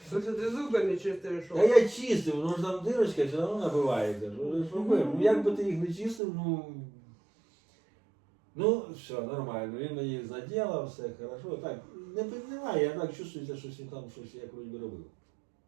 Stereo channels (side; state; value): left; drops out; at 6.2 s